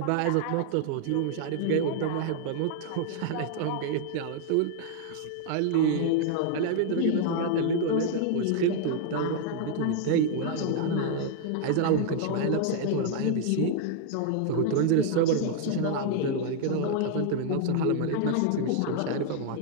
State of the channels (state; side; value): different; both; correlation 0.00